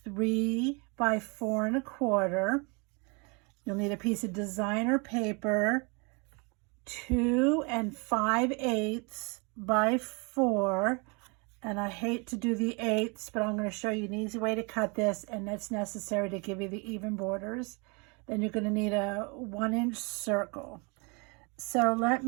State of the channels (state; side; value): quieter; left; 31.6 dB